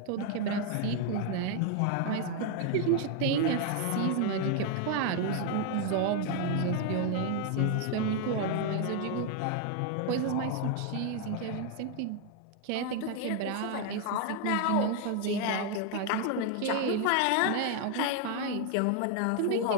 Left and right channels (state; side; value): different; both; correlation 0.00